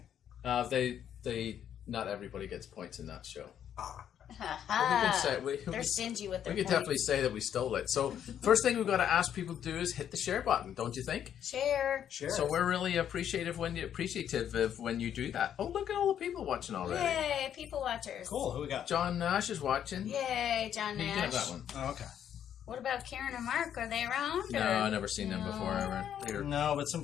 They not everybody gets points in that show. Ah. They're stingy with their We could points. definitely say that we stole it. So first thing we've got to ask people to do is hit the share button, don't you think? Share. So we're really appreciative when you do that. Oh, look at all the people watching already. Yay, people watchers. Cool. Who we got? John Nash is watching. Yay, John You can have Nash. that one. Oh, okay. What about Karen and Mark? Are they around? No, or? I've never seen them before ever. They're No, but some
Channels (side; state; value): right; quieter; 9.6 dB